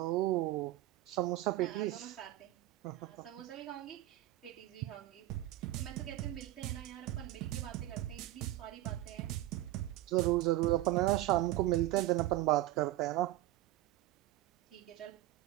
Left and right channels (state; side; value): quieter; left; 15.8 dB